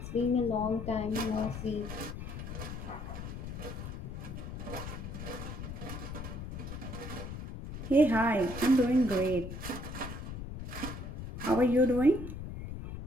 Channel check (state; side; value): noise; left; rumble, 8 dB below the sound